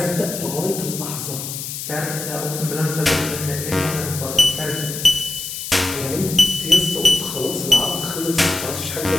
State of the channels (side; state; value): left; noise; hiss, 7 dB below the sound